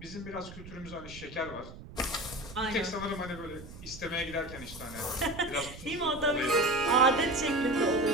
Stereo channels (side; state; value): right; noise; rumble, 15 dB below the sound